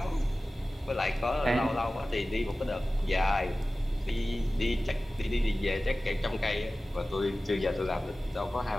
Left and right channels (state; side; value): normal; both; correlation 0.96